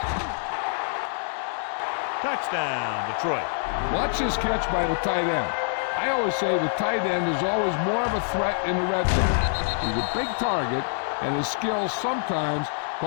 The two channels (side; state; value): right; silent; digital silence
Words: Touchdown, Detroit. Watch this catch by the tight end. I always say the tight end is always more of a threat in the red zone. He's a big target, and his skills sometimes